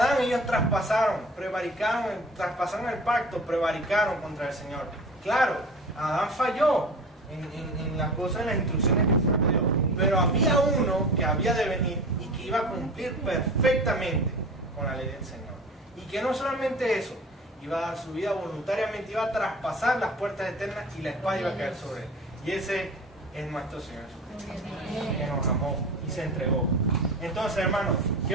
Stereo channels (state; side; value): normal; both; correlation 0.37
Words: ellos traspasaron el pacto, prevaricaron contra el Señor? Claro, Adán falló en las cosas, en las instrucciones que el Señor dio. Pero había uno que había de venir y que iba a cumplir perfectamente con la ley del Señor. Y que no solamente eso, iba a dar su vida voluntariamente, iba a traspasar las puertas eternas y la espada iba a caer sobre él. Y ese es nuestro Señor Jesucristo, que nos amó y se entregó. Entonces, hermanos,